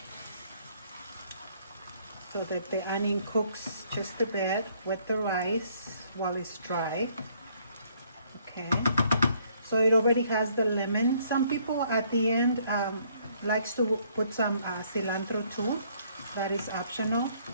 so that the onion cooks just a bit with the rice while it's dry. Okay, so it already has the lemon. Some people at the end likes to put some cilantro too. That is optional.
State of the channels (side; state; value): both; inverted; correlation -0.65